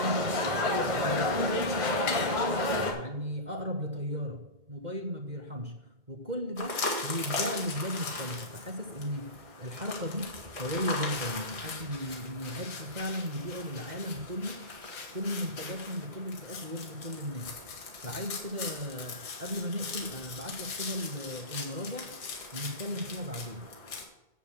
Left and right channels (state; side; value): late; left; 2.1 ms